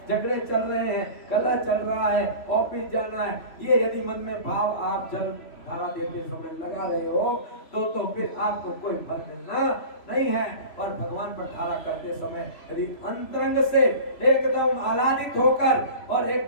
झगड़े चल रहे हैं, कलह चल रहा है, ऑफिस जाना है, ये यदि मन में भाव आप जल धारा देते समय लगा रहे हो तो फिर आपको कोई फल मिलना नहीं है। और भगवान पर धारा करते समय यदि अंतरंग से एकदम आह्लादित होकर और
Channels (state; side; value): late; right; 3.0 ms